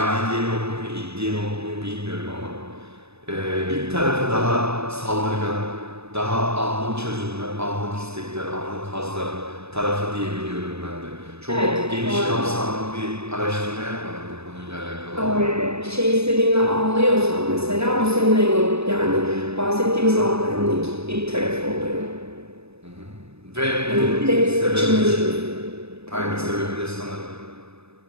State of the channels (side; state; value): left; late; 0.79 ms